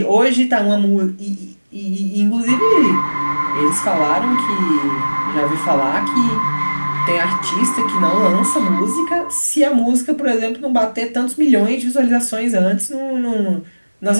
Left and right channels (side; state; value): both; inverted; correlation -1.00